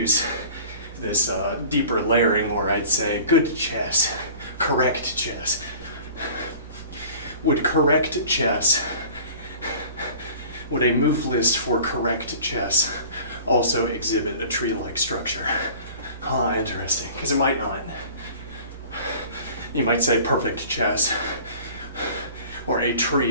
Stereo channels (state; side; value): inverted; both; correlation -0.44